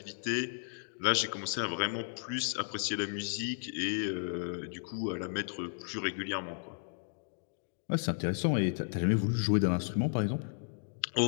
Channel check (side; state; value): right; silent; digital silence